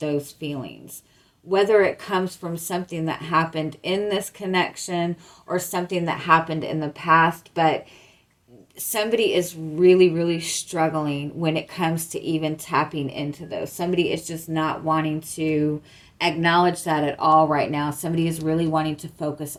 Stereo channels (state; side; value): identical; both; correlation 1.00